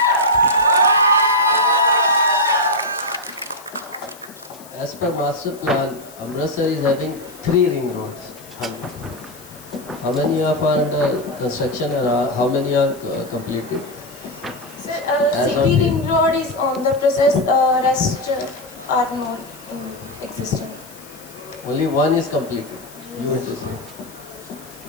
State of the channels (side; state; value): left; noise; hiss, 21 dB below the sound